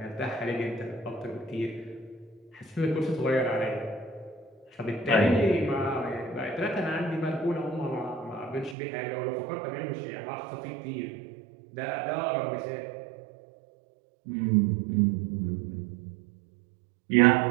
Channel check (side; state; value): left; drops out; at 8.8 s